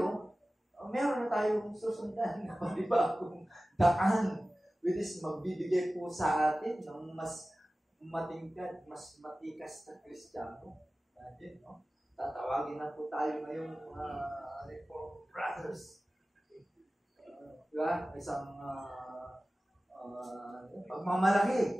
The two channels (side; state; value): both; normal; correlation 0.96